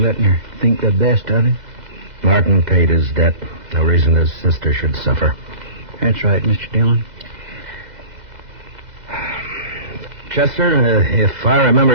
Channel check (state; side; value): late; left; 2.0 ms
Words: letting her think the best of it. Martin paid his debt. No reason his sister should suffer. That's right, Mr. Dillon. Chester, if I